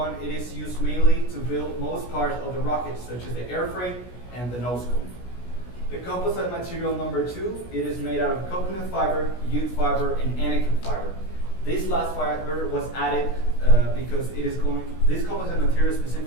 it is used mainly to build most parts of the rocket, such as the airframe and the nose cone. The composite material number two, it is made out of coconut fiber, jute fiber, and anakin fiber. This last fiber was added because this composite material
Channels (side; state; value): right; late; 16 ms